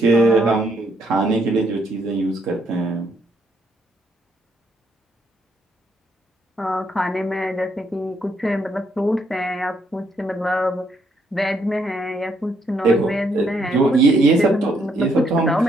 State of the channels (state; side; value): normal; both; correlation 0.73